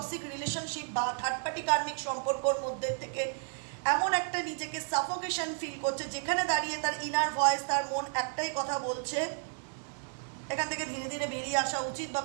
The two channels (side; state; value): left; silent; 56 dB below the other